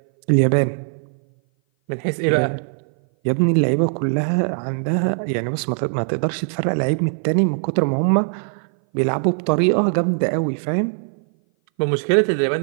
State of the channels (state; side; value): silent; left; 58 dB below the other